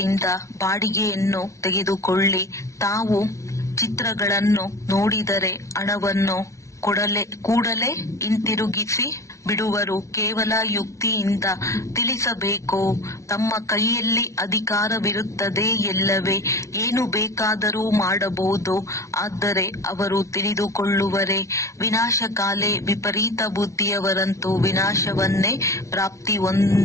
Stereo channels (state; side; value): late; right; 0.14 ms